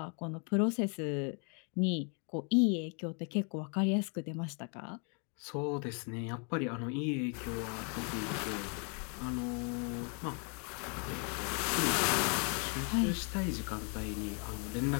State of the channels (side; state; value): right; quieter; 38.3 dB